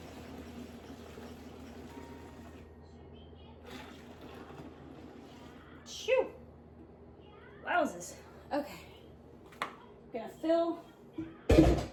Shoo! Wowzers. Okay.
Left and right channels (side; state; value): both; identical; correlation 1.00